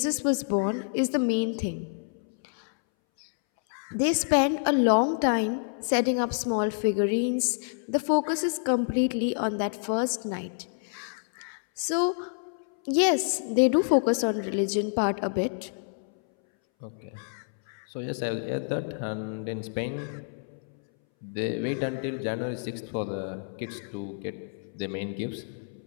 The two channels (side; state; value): right; silent; 59 dB below the other